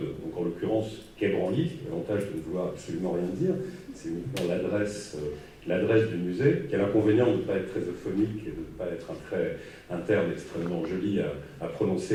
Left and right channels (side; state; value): both; identical; correlation 1.00